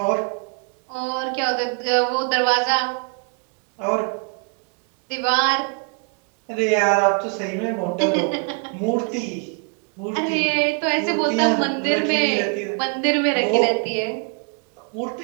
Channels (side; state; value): left; quieter; 38.4 dB